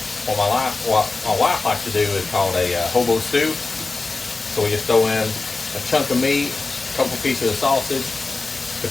what my wife likes to do is called a hobo stew. So we just throw in a chunk of meat, a couple pieces of sausage,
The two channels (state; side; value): quieter; right; 3.7 dB